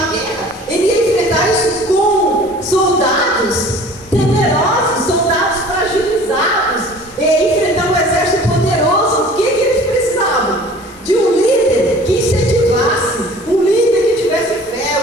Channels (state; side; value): normal; both; correlation 0.47